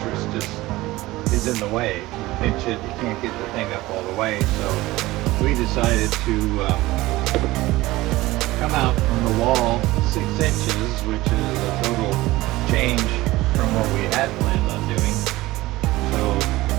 is in the way. You pinch it, you can't get the thing up all the way. So we decided to come out from the wall 6 inches, which is a total change from what we had planned on doing. So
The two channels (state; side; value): quieter; left; 18.5 dB